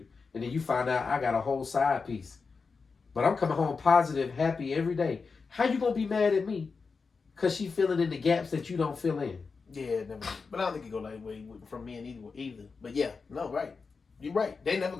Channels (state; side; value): quieter; right; 4.8 dB